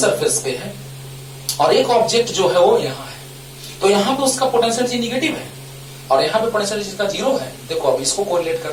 पे है और एक ऑब्जेक्ट जो है वो यहाँ है। तो यहाँ पे उसका पोटेंशियल एनर्जी निगेटिव है और यहाँ पे पोटेंशियल एनर्जी का जीरो है। देखो अब इसको कोरिलेट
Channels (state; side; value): identical; both; correlation 1.00